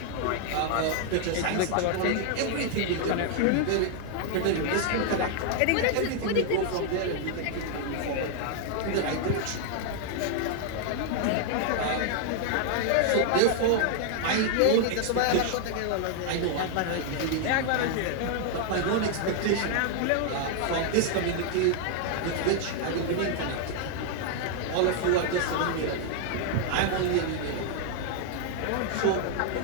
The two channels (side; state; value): both; different; correlation 0.00